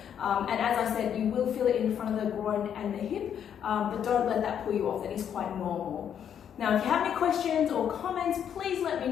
And as I said, you will feel it in front of the groin and the hip, but don't let that pull you off. That is quite normal. Now, if you have any questions or comments, please let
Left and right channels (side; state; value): right; quieter; 8.8 dB